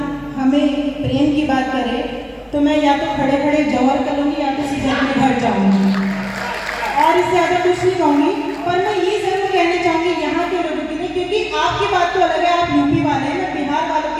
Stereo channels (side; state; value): both; identical; correlation 1.00